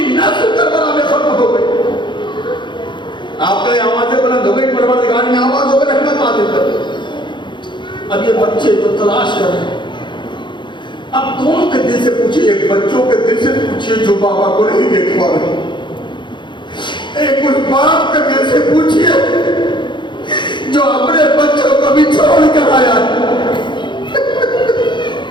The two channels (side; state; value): right; late; 0.23 ms